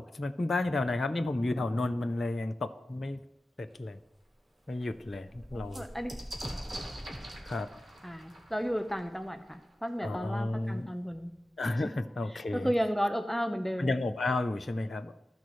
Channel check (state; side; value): normal; both; correlation 0.94